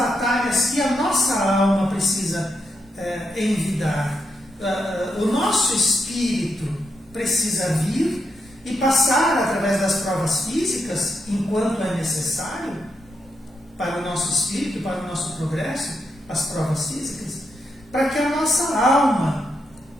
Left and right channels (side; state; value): both; normal; correlation 0.82